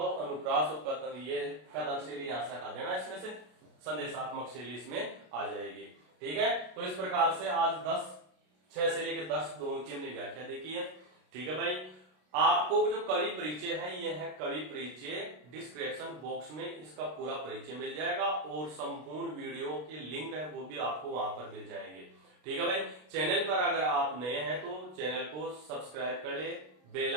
अनुप्रास और कथन, ये कथन शैली यहां से हटा देना, इसमें से संदेशात्मक शैली इसमें आ जाएगी, ठीक है। तो इस प्रकार से आज 6 से लेकर 10 दोनों की हमने व्याख्या देखी है, ठीक है भाई। आपको जो कवि परिचय है, यह है कवि परिचय, डिस्क्रिप्शन बॉक्स में इसका पूरा परिचय मिल जाएगा, और संपूर्ण वीडियो के लिंक है वो भी आपको वहां पर मिल जाएंगे, ठीक है भाई। चैनल पर अगर आप नए हैं तो चैनल को सब्सक्राइब कर ले, बेल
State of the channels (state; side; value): late; left; 33 ms